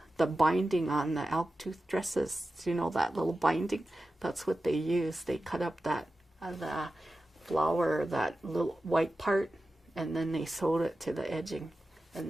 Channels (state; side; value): normal; both; correlation 0.93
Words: the binding on the elk tooth dresses. You know, that little binding? That's what they use. They cut up that the flour, that little white part, and then they sewed it to the edging.